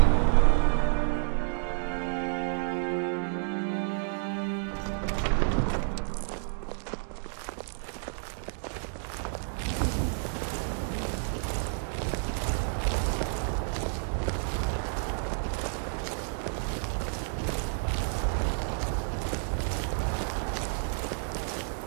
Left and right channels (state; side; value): silent; left; digital silence